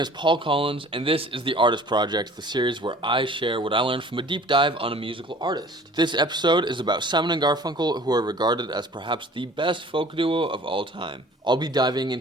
Paul Collins, and this is The Artist Project, the series where I share what I learned from a deep dive on a musical artist. This episode is about Simon and Garfunkel, who are regarded as perhaps the best folk duo of all time. I'll be diving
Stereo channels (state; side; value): normal; both; correlation 0.49